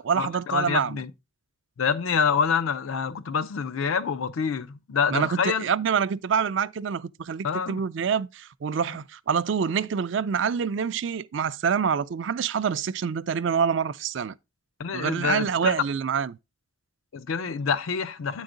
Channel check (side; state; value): both; normal; correlation -0.03